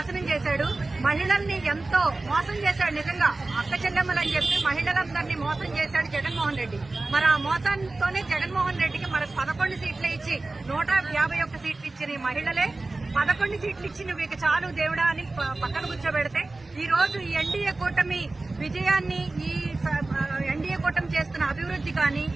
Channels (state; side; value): quieter; left; 3.2 dB